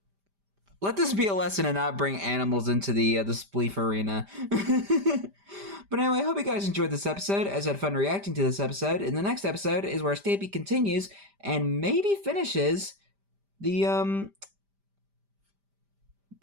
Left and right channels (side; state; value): left; late; 5.0 ms